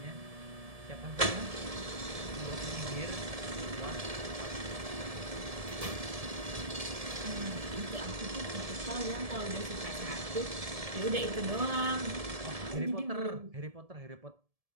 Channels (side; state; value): left; late; 1.7 ms